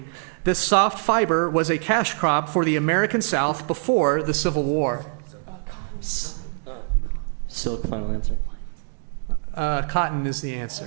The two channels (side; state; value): left; silent; 58 dB below the other